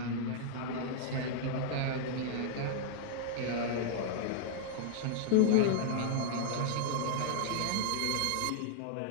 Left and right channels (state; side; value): different; both; correlation -0.01